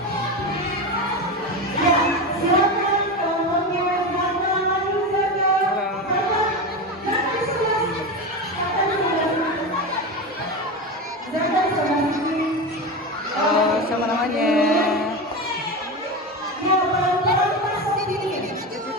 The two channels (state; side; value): normal; both; correlation 0.20